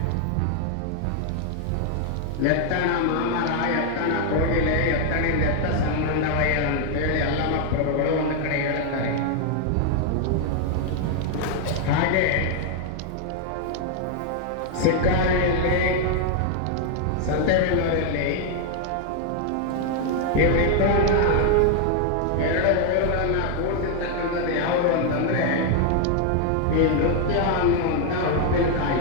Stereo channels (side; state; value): both; different; correlation 0.00